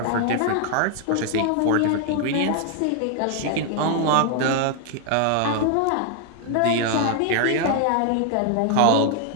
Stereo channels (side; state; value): both; different; correlation 0.00